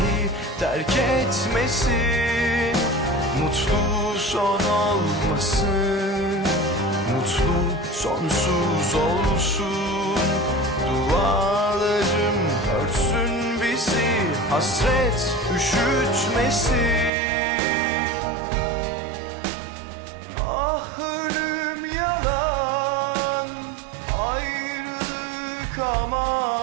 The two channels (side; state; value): left; drops out; at 17.1 s